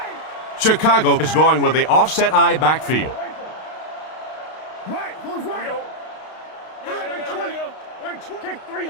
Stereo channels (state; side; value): late; right; 32 ms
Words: Chicago is going with the offset eye backfield.